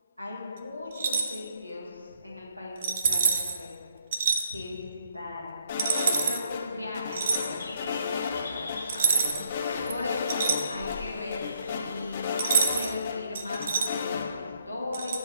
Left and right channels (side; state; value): both; inverted; correlation -0.69